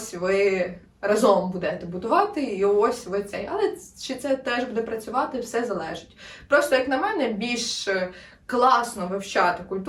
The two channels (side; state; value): both; identical; correlation 1.00